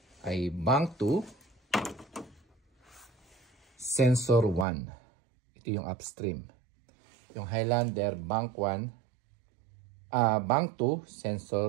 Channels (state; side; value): drops out; left; at 4.7 s